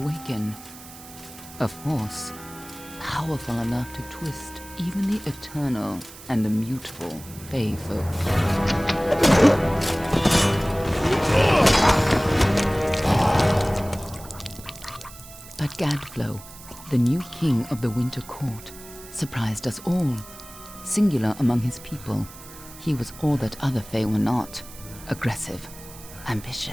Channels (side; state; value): right; noise; hiss, 17 dB below the sound